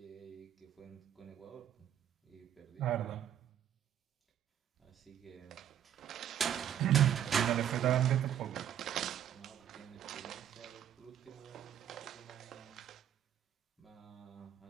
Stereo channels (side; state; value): left; quieter; 10.2 dB